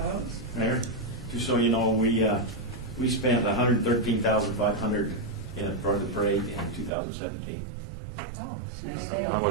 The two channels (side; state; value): left; drops out; at 6.9 s